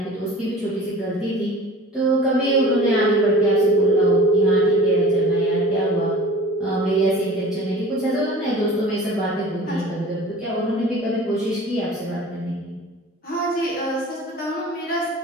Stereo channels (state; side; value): normal; both; correlation 0.41